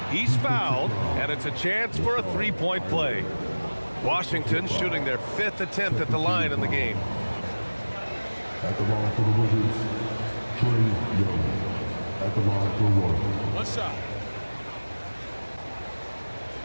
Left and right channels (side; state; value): both; inverted; correlation -1.00